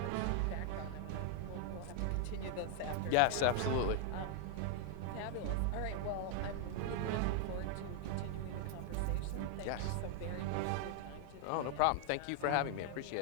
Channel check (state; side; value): different; both; correlation 0.00